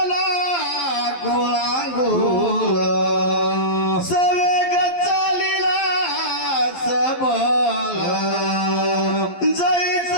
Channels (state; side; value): late; right; 11 ms